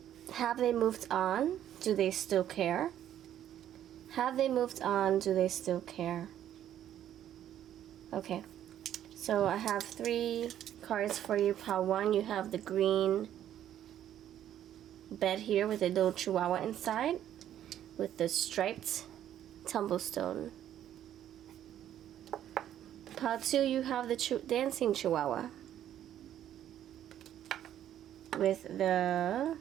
have they moved on? Do they still care? Have they moved on? Do they still care? Okay, so I have 3 cards for you. Pile 1, you have the green bed here with a little chihuahua inside with the striped tumblestone. Pile 2, you have the dancing chihuahua with the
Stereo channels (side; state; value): left; quieter; 11.1 dB